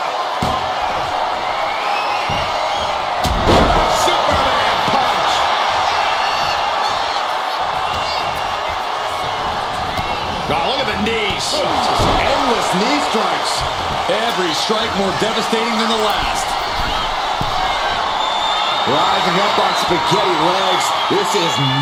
Superman punch. Oh, look at the knees. Endless knee strikes. Every strike more devastating than the last. Rising up on spaghetti legs. This is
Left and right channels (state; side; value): identical; both; correlation 1.00